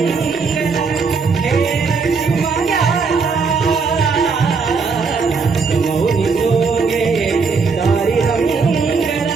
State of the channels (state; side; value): quieter; left; 4.9 dB